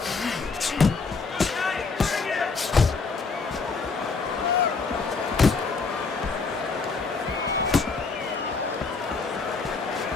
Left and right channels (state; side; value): quieter; right; 4.5 dB